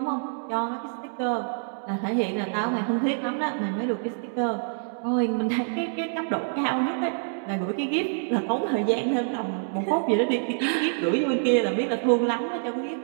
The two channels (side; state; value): left; silent; digital silence